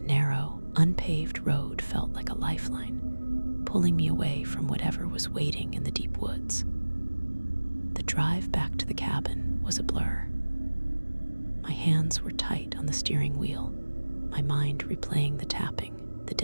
narrow, unpaved road felt like a lifeline, pulling me away from whatever was waiting in the deep woods. The drive back to the cabin was a blur. My hands were tight on the steering wheel, my mind replaying the tapping, the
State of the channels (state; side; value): inverted; both; correlation -1.00